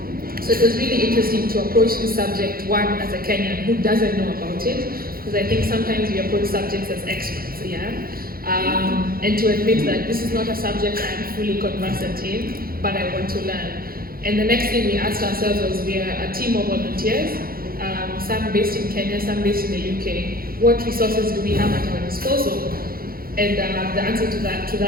So it was really interesting to approach this subject, one, as a Kenyan who doesn't know about it, because I think sometimes we approach subjects as experts, and to admit that this is not a subject I'm fully conversant in, but I want to learn. And the next thing we asked ourselves was, we are a team of volunteers, some based in Kenya, some based in the UK. What resources do we have at our disposal? And the answer to that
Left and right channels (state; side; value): late; left; 0.43 ms